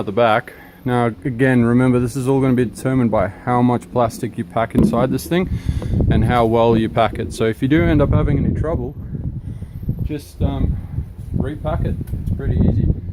the back. Now again, remember, this is all going to be determined by how much plastic you pack inside this thing and how well you pack it. So if you do end up having any trouble, just repack it. It's pretty easy.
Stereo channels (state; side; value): identical; both; correlation 1.00